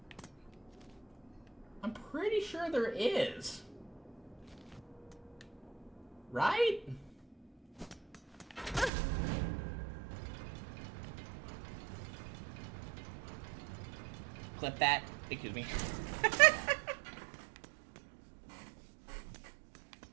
I'm pretty sure there is. Right? Clip that. Excuse me.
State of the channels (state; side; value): drops out; left; at 8.9 s